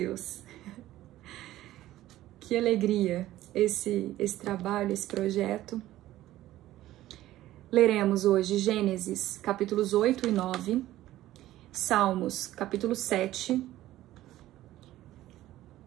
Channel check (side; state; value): left; quieter; 14.8 dB